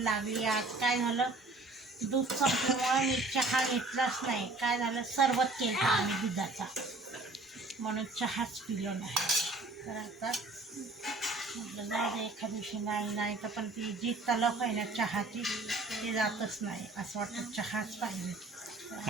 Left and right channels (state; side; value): quieter; left; 3.2 dB